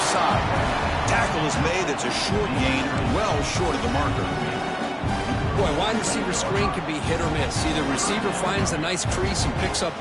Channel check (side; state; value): both; identical; correlation 1.00